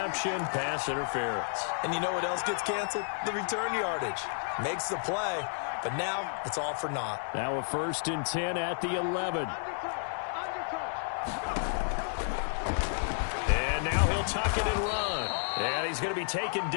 pass interference. And you know what else gets canceled? The return yardage. Makes the play, but now it's all for naught. Now a 1st and 10 at the 11. And now he'll tuck it and run. And he's going to be taken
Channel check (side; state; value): right; silent; 57 dB below the other